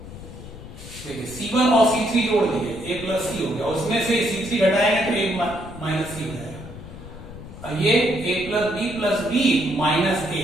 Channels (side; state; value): left; noise; rumble, 14 dB below the sound